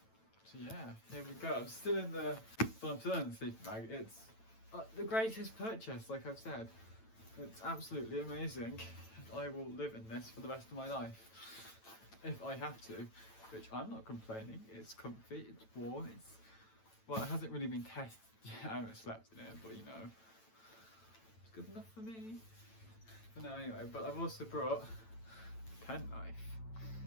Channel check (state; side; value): late; right; 9.0 ms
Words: So yeah, here we go. I'm still in the sleeping bag. It's the greatest purchase, like I've said. It's absolutely amazing. I will live in this for the rest of my life if I have to, which I'm not complaining. It's comfy, it's warm, well, it hasn't really been tested yet. I haven't slept in it, but you know, it's good enough for me for now anyway. But I've also brought a penknife,